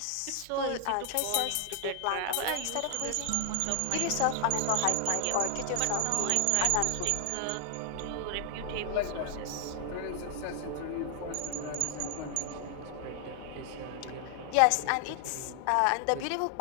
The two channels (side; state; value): both; different; correlation 0.00